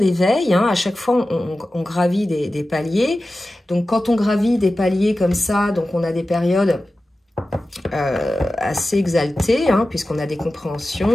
Hein. À chaque fois, on gravit des paliers. Donc, quand on gravit des paliers comme ça, donc on a des périodes assez exaltées, hein, puisqu'on a des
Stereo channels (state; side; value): normal; both; correlation 0.94